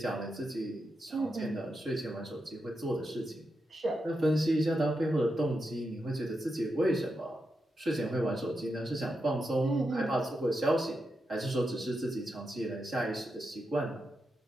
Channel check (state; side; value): normal; both; correlation 0.86